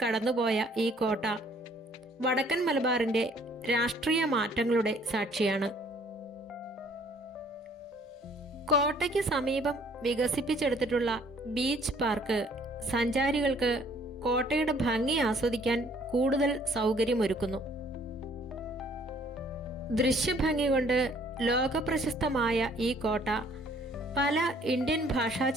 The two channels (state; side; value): normal; both; correlation 0.60